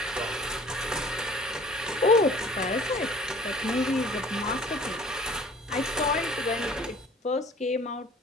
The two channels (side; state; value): both; normal; correlation 0.50